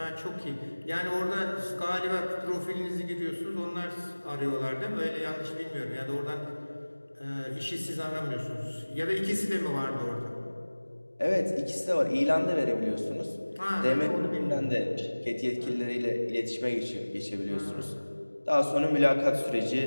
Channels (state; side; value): inverted; both; correlation -1.00